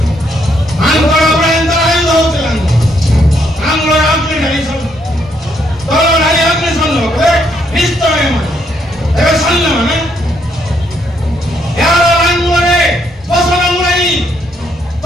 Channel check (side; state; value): both; normal; correlation 0.73